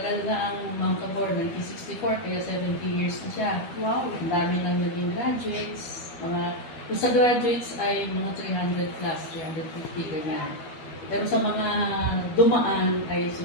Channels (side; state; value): right; late; 12 ms